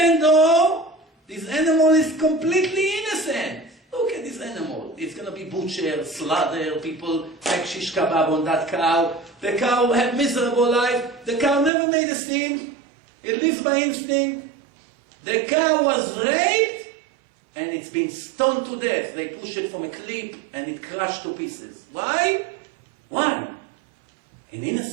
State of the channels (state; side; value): drops out; left; at 11.7 s